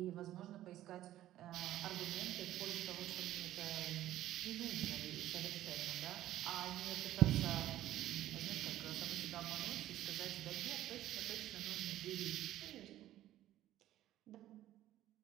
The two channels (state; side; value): quieter; left; 13.7 dB